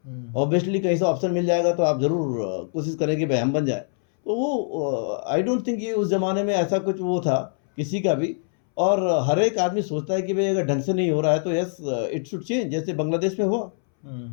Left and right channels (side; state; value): right; silent; 63 dB below the other